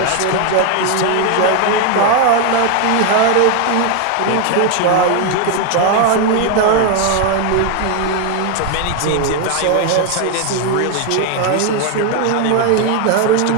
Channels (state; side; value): different; both; correlation 0.01